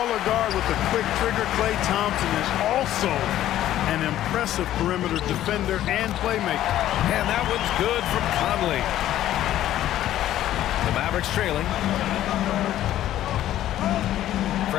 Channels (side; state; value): right; quieter; 12.9 dB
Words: guard with a quick trigger, Klay Thompson, is also an impressive perimeter defender and playmaker. And that one's good from Conley. The Mavericks trailing.